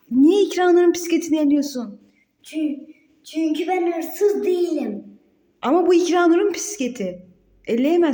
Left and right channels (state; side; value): identical; both; correlation 1.00